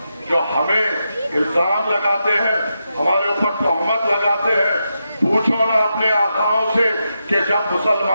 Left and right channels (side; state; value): both; inverted; correlation -0.86